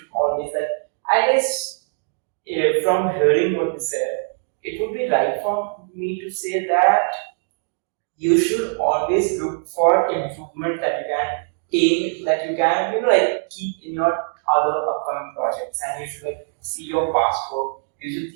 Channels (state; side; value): silent; left; digital silence